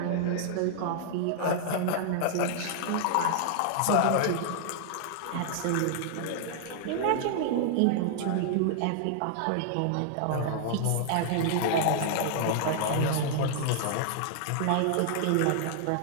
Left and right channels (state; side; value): different; both; correlation -0.01